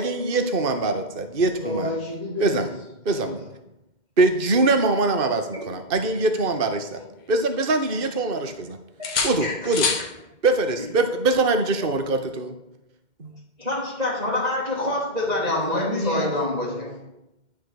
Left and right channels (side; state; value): left; late; 2.1 ms